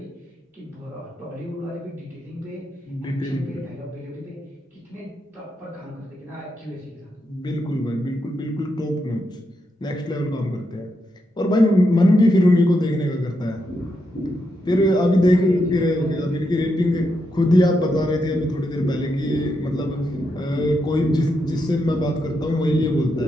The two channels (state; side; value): normal; both; correlation 0.83